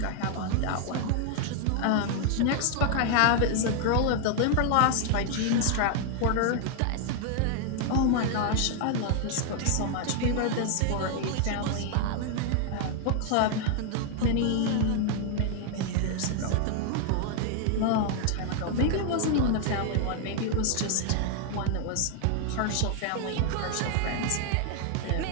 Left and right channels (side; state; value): both; different; correlation 0.00